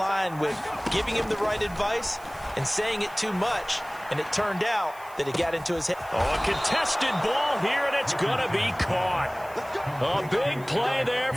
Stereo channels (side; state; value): right; noise; hiss, 23 dB below the sound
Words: with giving him the right advice and saying it too much, and it turned out that it got into his head. Oh, a contested ball here, and it's going to be caught. A big play there